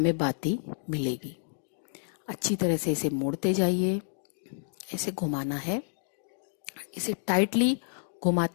बाती मिलेगी। अच्छी तरह से इसे मोड़ते जाइए। इसे घुमाना है। इसे टाइटली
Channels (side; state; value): right; silent; digital silence